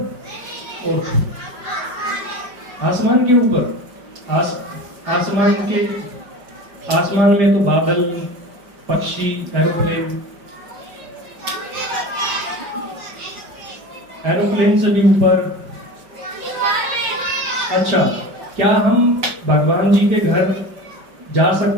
और आसमान के ऊपर, आसमान में तो बादल, पक्षी, एरोप्लेन से भी ऊपर। अच्छा, क्या हम भगवान जी के घर जा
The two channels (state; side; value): late; left; 5.4 ms